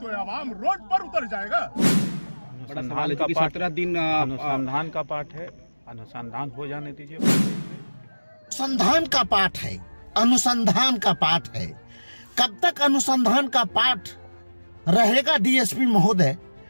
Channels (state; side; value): inverted; both; correlation -1.00